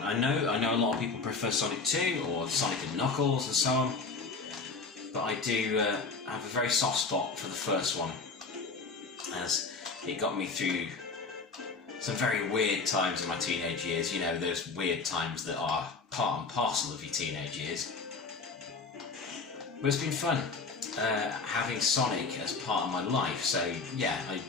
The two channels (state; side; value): quieter; right; 4.3 dB